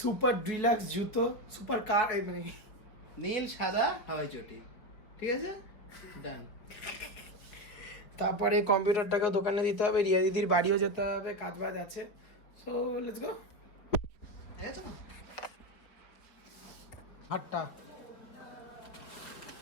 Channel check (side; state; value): right; late; 4.9 ms